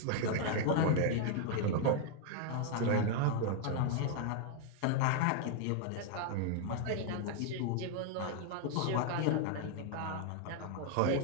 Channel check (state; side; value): different; both; correlation 0.00